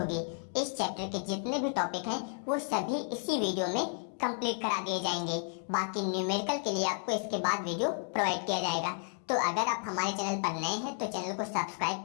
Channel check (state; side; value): silent; right; 56 dB below the other